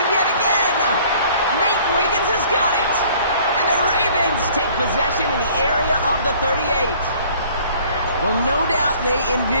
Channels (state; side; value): inverted; both; correlation -0.54